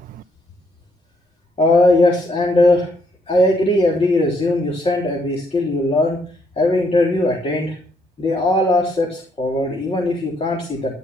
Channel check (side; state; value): both; normal; correlation 0.72